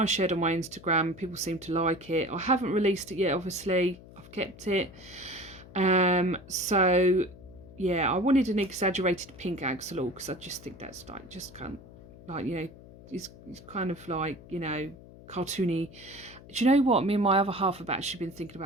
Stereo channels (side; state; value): left; noise; hum, 19 dB below the sound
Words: shared on my Instagram. People seem to like it. I haven't released it yet, obviously. I've kept it. So yeah, I wanted an exaggerated pink axolotl because I just think that's like, just kind of like, you know, it's kind of like, you know, cartoony. Do you know what? Me and my other half have actually been thinking